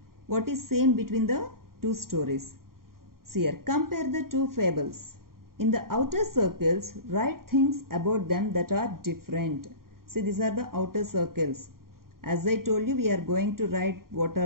what is same between the two stories. See here, compare the two fables. In the outer circles, write things about them that are different. See, these are the outer circles. As I told you, we are going to write what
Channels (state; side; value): late; left; 0.92 ms